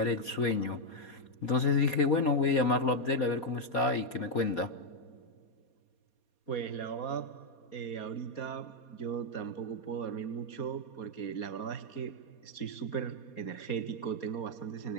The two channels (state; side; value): late; right; 4.2 ms